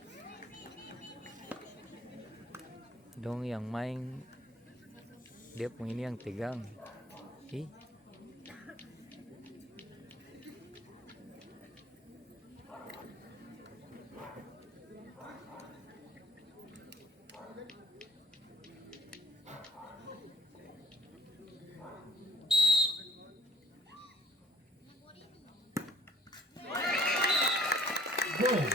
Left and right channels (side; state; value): both; normal; correlation 0.58